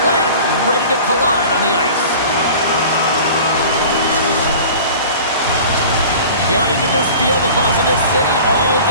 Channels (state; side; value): inverted; both; correlation -0.41